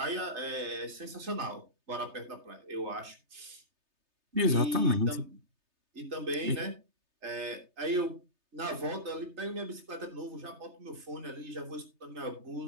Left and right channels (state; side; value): late; left; 3.3 ms